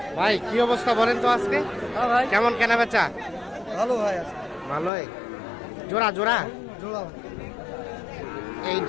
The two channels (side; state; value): right; drops out; at 4.9 s